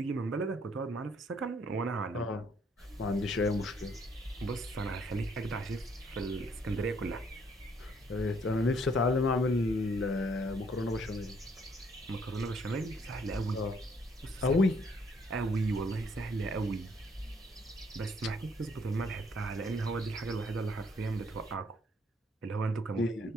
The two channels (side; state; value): both; normal; correlation 0.67